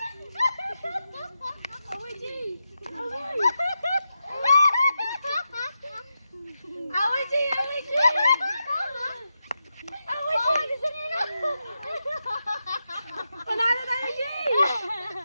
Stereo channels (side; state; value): both; inverted; correlation -0.88